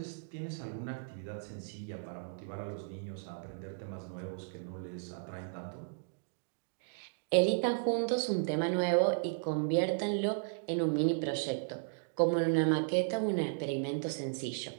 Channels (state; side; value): silent; left; digital silence